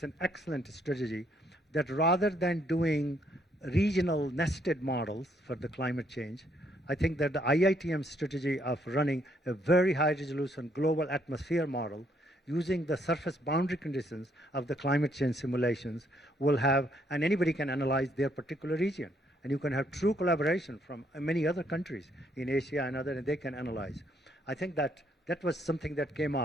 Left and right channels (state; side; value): normal; both; correlation 0.71